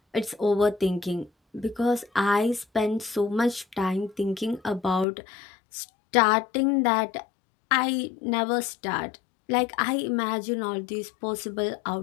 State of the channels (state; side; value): drops out; right; at 5.1 s